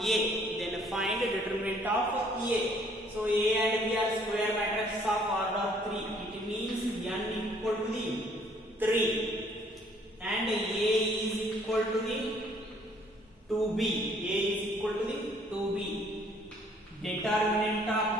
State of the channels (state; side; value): normal; both; correlation 0.62